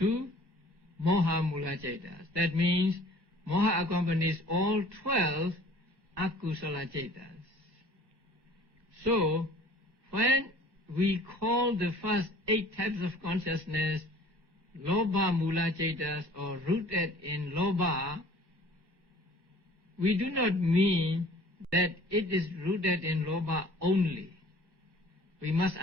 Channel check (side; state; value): left; late; 1.1 ms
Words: moha mula chetas. That means moha accompanies all 12 akusala chetas. So, when we call the first 8 types of consciousness Lobha Mula Chaitas or rooted in Lobha, we do not mean that it is rooted in Lobha only. We must